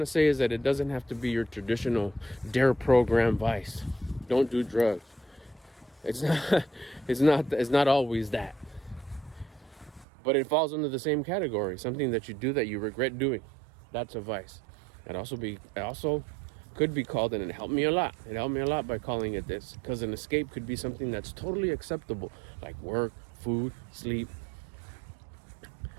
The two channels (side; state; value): left; drops out; at 10.1 s